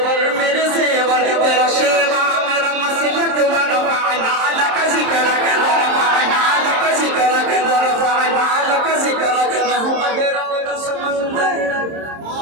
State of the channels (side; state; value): left; late; 27 ms